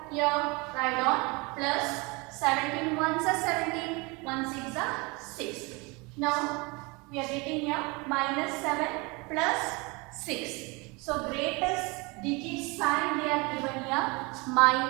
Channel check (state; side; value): quieter; left; 27.1 dB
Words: here, write on plus 17 once are 17, 1 6 are 6. Now we are getting here minus 7 plus 6. So greatest digit sign they are given here